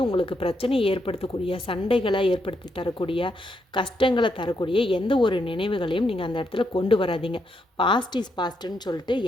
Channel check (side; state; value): both; normal; correlation 0.79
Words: உங்களுக்கு பிரச்சனையை ஏற்படுத்தக்கூடிய, சண்டைகளை ஏற்படுத்தி தரக்கூடிய, கஷ்டங்களை தரக்கூடிய எந்த ஒரு நினைவுகளையும் நீங்கள் அந்த இடத்துல கொண்டு வராதீங்க. பாஸ்ட் இஸ் பாஸ்ட்டுன்னு சொல்லிட்டு